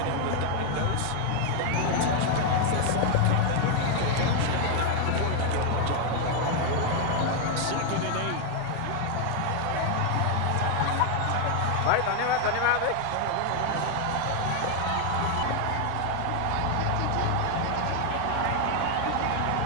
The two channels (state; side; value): different; both; correlation 0.01